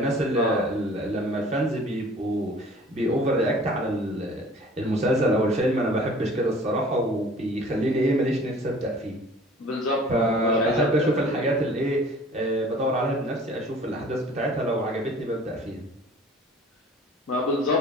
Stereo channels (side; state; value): both; normal; correlation 0.48